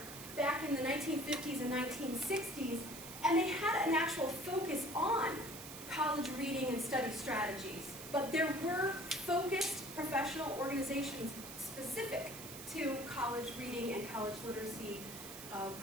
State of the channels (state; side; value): noise; right; hiss, 11 dB below the sound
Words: back in the 1950s and 1960s, and they had an actual focus on college reading and study strategies. But there were focused professional organizations specific to college reading and college literacy